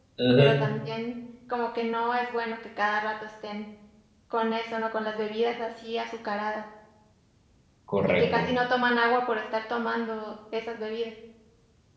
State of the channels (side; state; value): both; identical; correlation 1.00